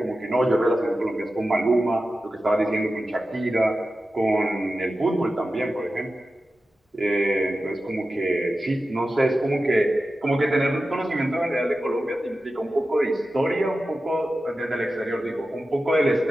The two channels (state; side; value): normal; both; correlation 0.93